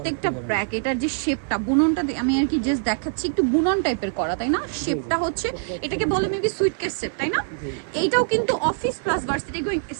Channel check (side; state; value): left; silent; 57 dB below the other